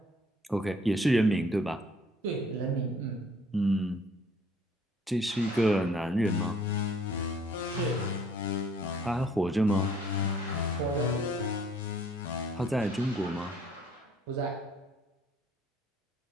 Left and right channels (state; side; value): normal; both; correlation 0.60